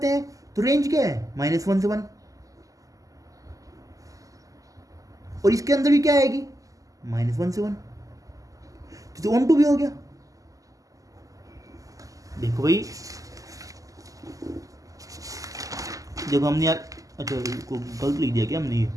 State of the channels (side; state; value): left; late; 0.17 ms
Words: हैं तो रेंज क्या है -1 से 1, और इसके अंदर भी क्या आएगी -1 से 1, तो ऑन टू भी हो गया। देखो भाई, जब हमने यार अच्छा को गलत लिख दिया क्या हमने, ये